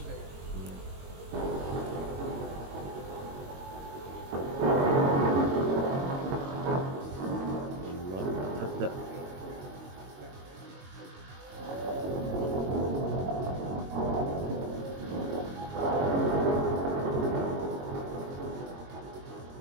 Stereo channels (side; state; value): left; late; 22 ms